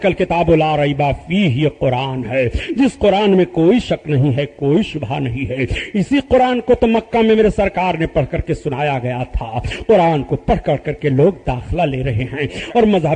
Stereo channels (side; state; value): both; identical; correlation 1.00